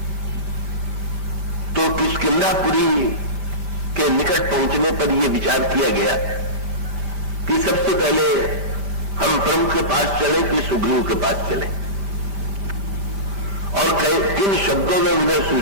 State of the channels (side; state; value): left; late; 5.1 ms